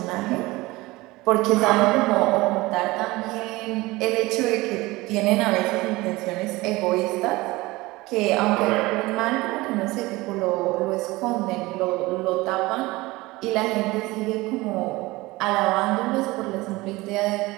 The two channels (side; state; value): left; quieter; 20.8 dB